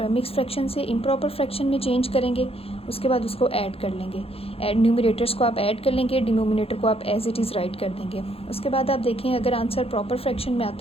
मिक्स फ्रैक्शन से इम्प्रॉपर फ्रैक्शन में चेंज करेंगे. उसके बाद उसको ऐड कर लेंगे. न्यूमिनेटर्स को आप ऐड कर लेंगे, डिनोमिनेटर को आप एज इट इज़ राइट कर देंगे. उसके बाद आप देखें अगर आंसर प्रॉपर फ्रैक्शन में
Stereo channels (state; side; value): late; right; 0.28 ms